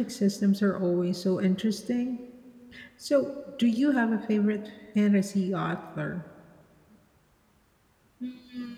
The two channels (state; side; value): identical; both; correlation 1.00